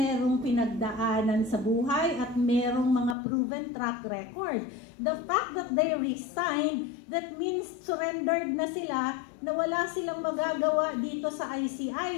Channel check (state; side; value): drops out; right; at 3.2 s